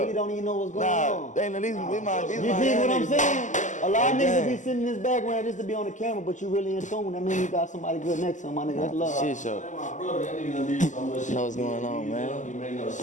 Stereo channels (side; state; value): right; late; 0.36 ms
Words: don't even know what's going on. You dig what I'm saying? A lot of niggas be sitting in this background just to be on the camera, but you really in tune. That means you got somebody good next to him, my nigga. That's love. Shit show. My brother, that nigga done did so much shit. Know what's going on, man. He made no